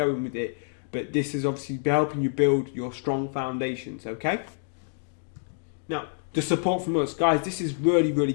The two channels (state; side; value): silent; right; digital silence